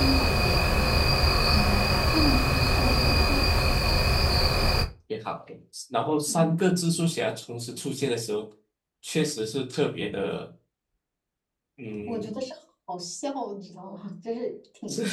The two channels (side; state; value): both; identical; correlation 1.00